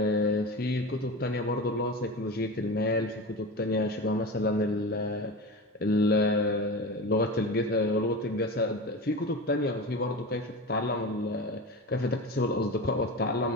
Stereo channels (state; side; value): normal; both; correlation 0.27